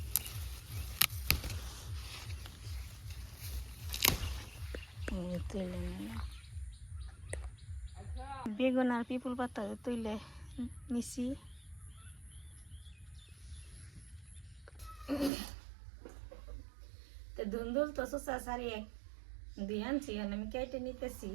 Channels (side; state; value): left; drops out; at 15.3 s